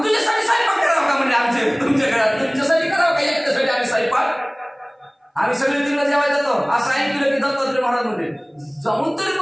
तुझ्यासाठी स्वयंपाक करावं का म्हणजे आमचे तुमच्या घरात तुमच्यासाठी करावं का एकट्यासाठी आम्ही स्वयंपाक आम्ही सगळे तिकडे जेवाय जातो असं ऐकलं की दत्तात्रय महाराज म्हणजे जाऊन तरी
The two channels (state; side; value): identical; both; correlation 1.00